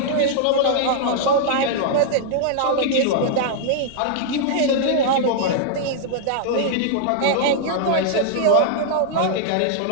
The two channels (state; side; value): different; both; correlation -0.01